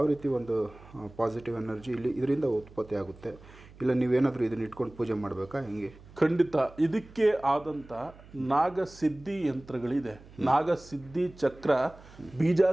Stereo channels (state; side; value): noise; right; hum, 21 dB below the sound